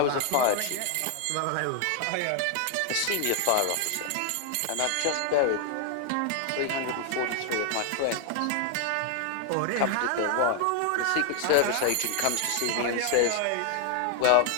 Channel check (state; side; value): different; both; correlation 0.00